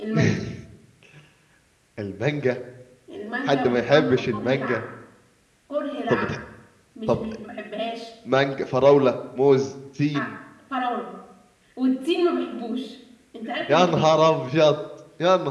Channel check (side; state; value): both; identical; correlation 1.00